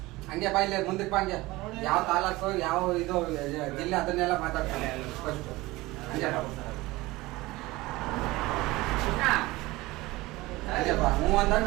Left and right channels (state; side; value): quieter; left; 20.1 dB